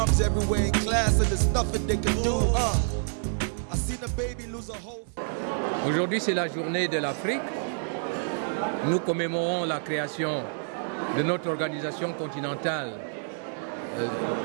everywhere in class, and there's nothing they can do. I seen a baby lose a whole. Aujourd'hui, c'est la journée de l'Afrique. Nous commémorons la création de notre organisation continentale,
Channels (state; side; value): silent; left; digital silence